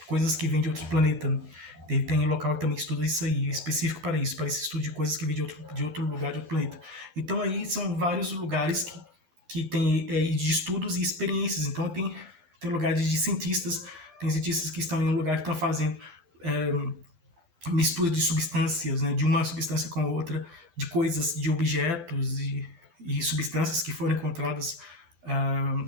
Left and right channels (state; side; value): late; left; 12 ms